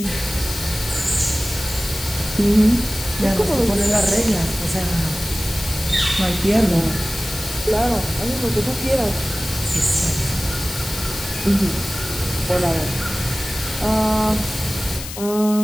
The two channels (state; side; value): noise; left; hiss, 10 dB below the sound